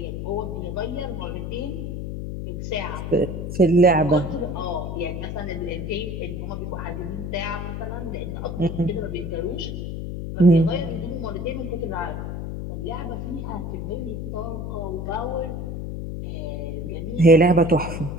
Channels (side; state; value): left; noise; hum, 5 dB below the sound